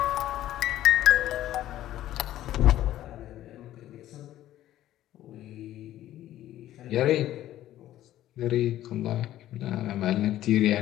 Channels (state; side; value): quieter; right; 13.4 dB